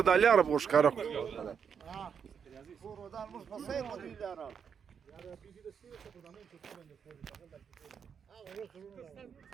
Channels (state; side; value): quieter; left; 7.1 dB